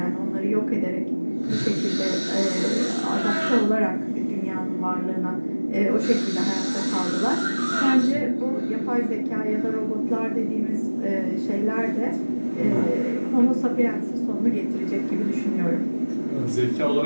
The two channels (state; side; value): inverted; both; correlation -1.00